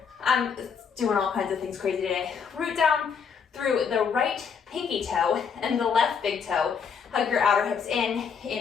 I'm doing all kinds of things crazy today. Root down through the right pinky toe and the left big toe. Hug your outer hips in.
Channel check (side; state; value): right; quieter; 6.3 dB